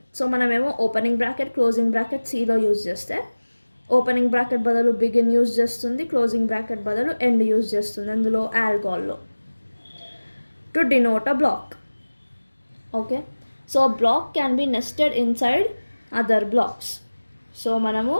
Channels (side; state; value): both; inverted; correlation -1.00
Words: So మనమేమో ఓపెనింగ్ బ్రాకెట్, క్లోజింగ్ బ్రాకెట్ సిలో యూజ్ చేస్తే ఓపెనింగ్ బ్రాకెట్ బదులు బిగిన్ యూజ్ చేస్తుంది, క్లోజింగ్ బ్రాకెట్ బదులు ఎండ్ యూజ్ చేస్తుంది అందులో ఆల్గోల్లో. To denote a block. Okay, so block can be nested inside other blocks. So మనము